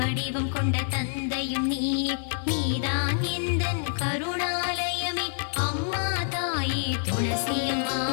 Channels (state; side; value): silent; right; 60 dB below the other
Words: கொண்ட தந்தையும் நீயே நீதான் எந்தன் கருணாலயமே அம்மா தாயே துளசியம்மா